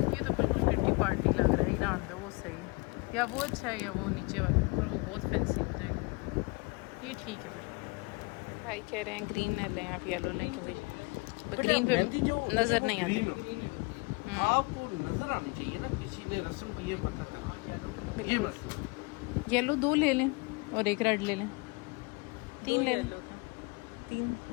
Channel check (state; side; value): quieter; right; 27.9 dB